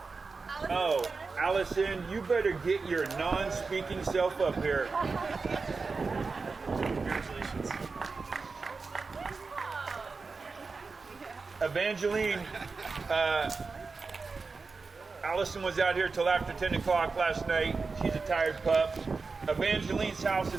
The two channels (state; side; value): quieter; left; 4.4 dB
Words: Oh, Allison, you better get your non-speaking self up here. Congratulations. Evangeline, Allison was out here till after 10 o'clock last night. She's a tired pup. Evangeline's house